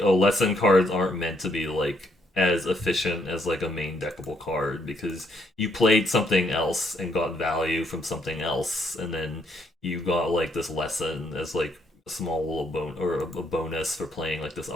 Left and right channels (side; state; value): both; normal; correlation 0.72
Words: oh, lesson cards aren't meant to be like as efficient as like a main deckable card because you played something else and got value from something else and then you got like this lesson as like a small little a bonus for playing like this